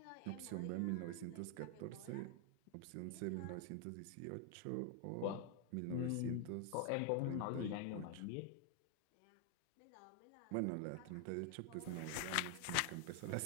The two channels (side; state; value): both; different; correlation 0.00